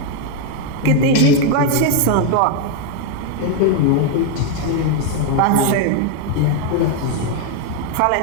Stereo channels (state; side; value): different; both; correlation 0.01